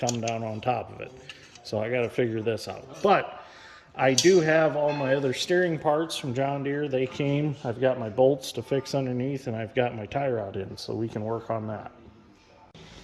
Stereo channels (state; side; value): identical; both; correlation 1.00